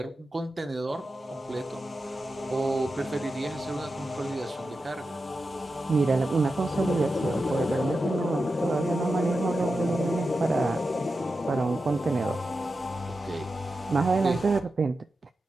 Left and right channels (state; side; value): normal; both; correlation 0.90